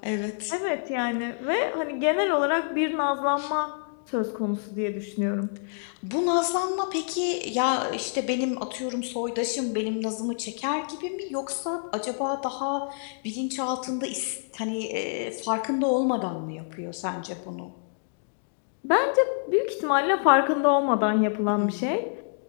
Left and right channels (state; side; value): silent; right; digital silence